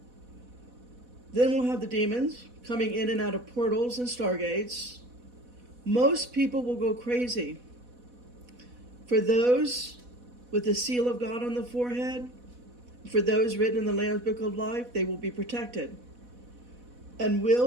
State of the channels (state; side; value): late; left; 4.1 ms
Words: Then we'll have the demons coming in and out of portals and stargates. Most people will go crazy. For those with the seal of God on the forehead, for those written in the Lamb's Book of Life, they will be protected and will